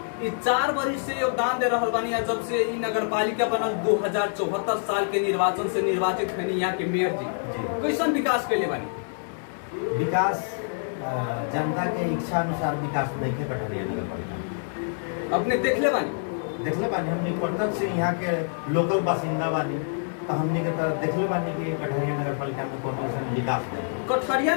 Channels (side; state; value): right; silent; digital silence